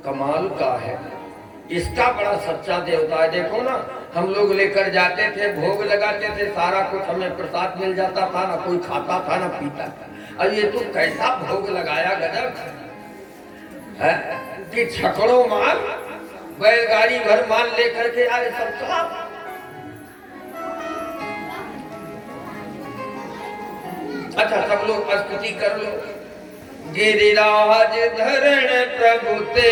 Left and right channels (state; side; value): identical; both; correlation 1.00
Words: कमाल का है, इसका बड़ा सच्चा देवता है। देखो ना, हम लोग लेकर जाते थे, भोग लगाते थे, सारा कुछ हमें प्रसाद मिल जाता था, ना कोई खाता था ना पीता था। और ये तो कैसा भोग लगाया, गजब है। कि छकड़ों माल बैलगाड़ी भर माल लेकर के आए सब साहब। अच्छा सब लोग स्तुति कर लो। गिरिराज धरण प्रभु